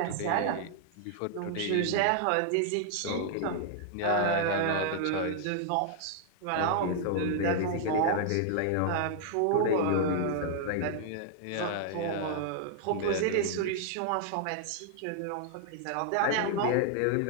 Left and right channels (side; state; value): both; different; correlation -0.01